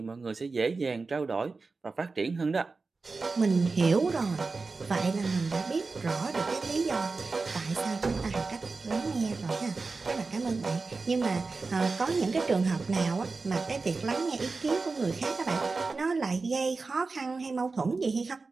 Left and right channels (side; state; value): left; quieter; 4.1 dB